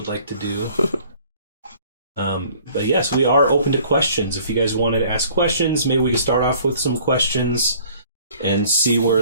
like to do. But yes, we are open to questions. If you guys wanted to ask questions, maybe we can start off with some questions and see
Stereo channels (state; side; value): inverted; both; correlation -0.54